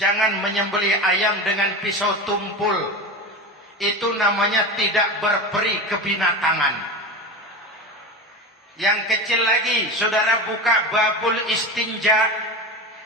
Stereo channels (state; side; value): normal; both; correlation 0.25